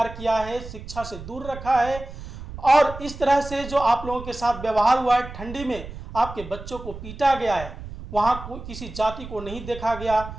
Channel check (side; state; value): right; noise; rumble, 12 dB below the sound